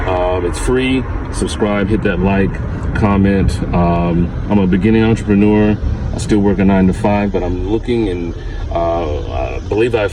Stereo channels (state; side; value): identical; both; correlation 1.00